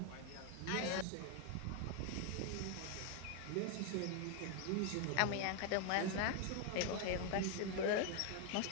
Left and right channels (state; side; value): different; both; correlation 0.01